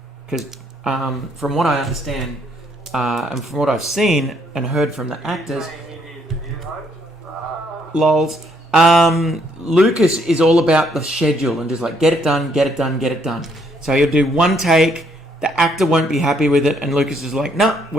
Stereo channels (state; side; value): normal; both; correlation 0.69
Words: Because from what I understand, and from what I've seen and heard from the actors, lols, Lucas is all about the schedule and just like, get it done, get it done, get it done. So he'll do one take, the actor won't be happy with it, and Lucas is like, no,